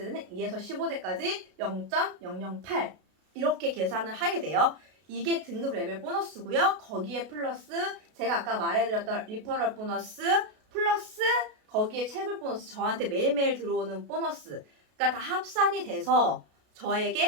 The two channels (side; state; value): left; late; 33 ms